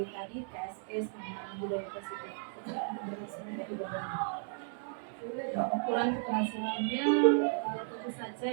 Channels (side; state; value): left; silent; 55 dB below the other